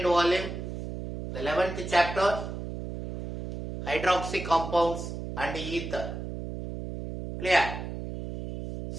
volume, the 11th chapter, hydroxy compounds and ether. Clear?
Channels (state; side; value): noise; right; hum, 7 dB below the sound